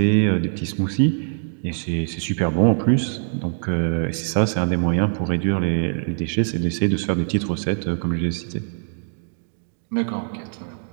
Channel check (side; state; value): left; silent; digital silence